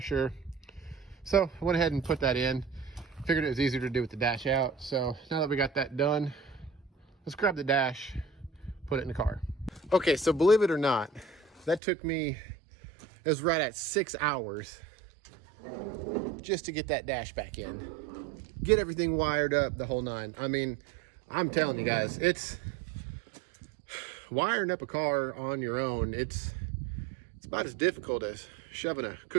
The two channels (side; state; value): left; drops out; at 11.8 s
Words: So I went ahead and put that in. Figured it was easier to do with the dash out. So now that we got that done, let's grab the dash, put it in the car. Okay, so believe it or not, that took me, it was right at 6 hours just to get that dash back in. Get everything wired up, the whole nine. I mean, I'm telling you guys, it's wiring up a car on your own. It's about as difficult as shoving a